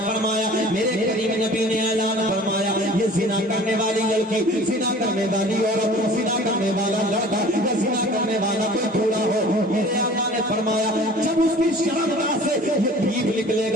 فرمایا، میرے کریم نبی نے اعلان فرمایا، یہ زنا کرنے والی لڑکی، زنا کرنے والی عورت، زنا کرنے والا لڑکا یا زنا کرنے والا کوئی بوڑھا ہو، میرے آقا نے فرمایا جب اس کی شرمگاہ سے یہ پیپ نکلے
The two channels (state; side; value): normal; both; correlation 0.46